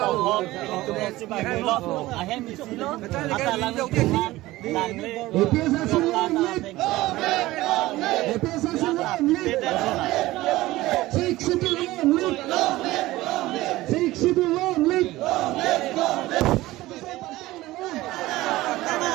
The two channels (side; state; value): left; quieter; 17.8 dB